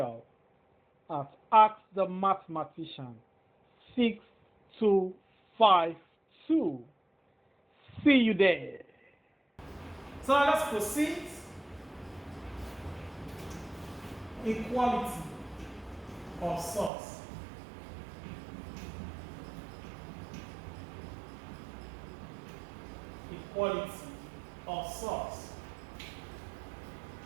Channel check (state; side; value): drops out; left; at 16.9 s